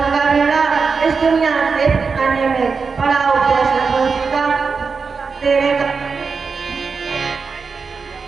का बेड़ा इस दुनिया से आने में बड़ा उपदेश का तेरे का।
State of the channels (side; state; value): left; quieter; 5.0 dB